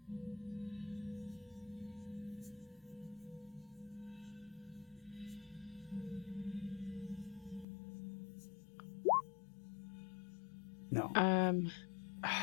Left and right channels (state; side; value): drops out; right; at 7.7 s